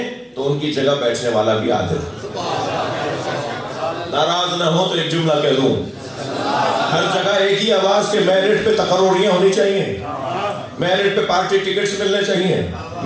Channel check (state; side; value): identical; both; correlation 1.00